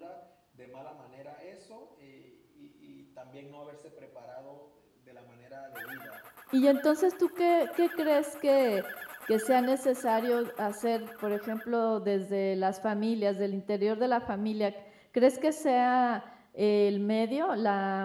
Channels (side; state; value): both; identical; correlation 1.00